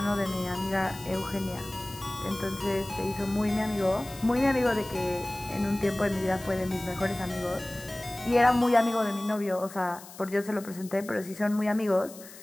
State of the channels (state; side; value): noise; left; hiss, 17 dB below the sound